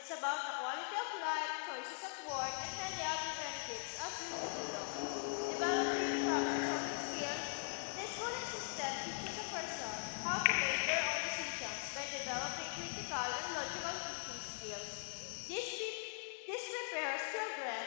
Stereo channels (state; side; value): silent; right; digital silence